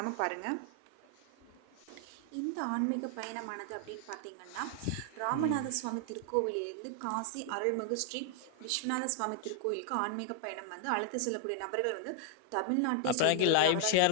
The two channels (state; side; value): different; both; correlation 0.00